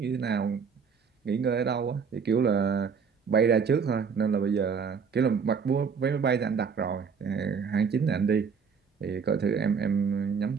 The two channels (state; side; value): quieter; left; 6.1 dB